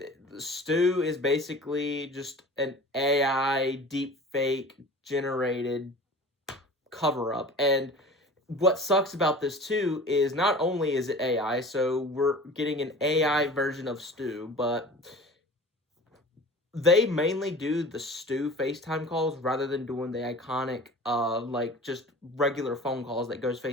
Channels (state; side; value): normal; both; correlation 0.40